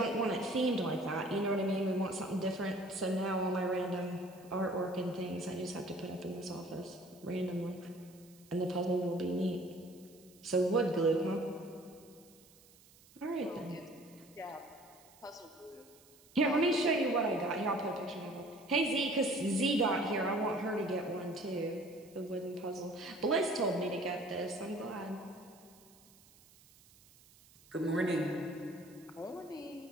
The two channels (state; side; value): noise; right; hiss, 26 dB below the sound